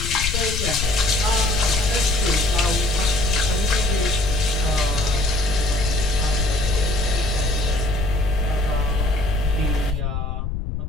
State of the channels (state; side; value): noise; left; rumble, 2 dB below the sound